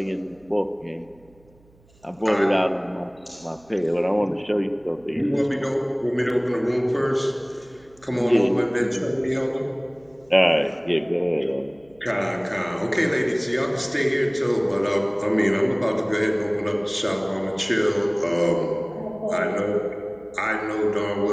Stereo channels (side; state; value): right; noise; hum, 30 dB below the sound